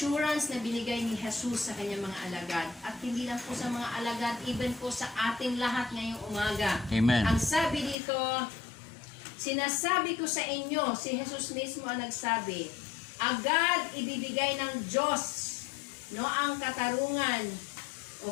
na binigay ni Jesus sa kanyang mga alagad. At hindi lang po sa mga alagad, even po sa ating lahat ngayong umaga. Amen. Ang sabi dito, sinasabi ko sa inyo, si Jesus mismo ang nagsabi, agad ibibigay ng Diyos ang katarungan,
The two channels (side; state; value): right; drops out; at 8.0 s